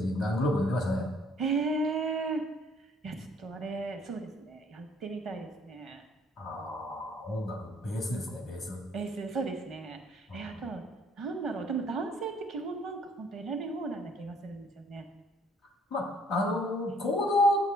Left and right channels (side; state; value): both; normal; correlation 0.61